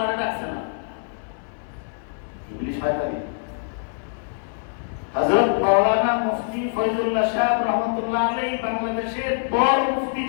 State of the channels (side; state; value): right; silent; 63 dB below the other